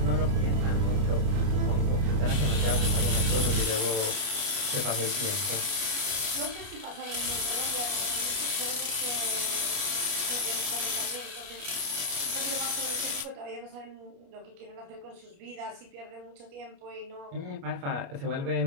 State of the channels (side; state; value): left; late; 29 ms